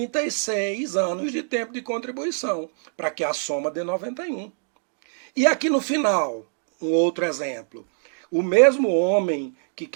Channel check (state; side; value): silent; left; digital silence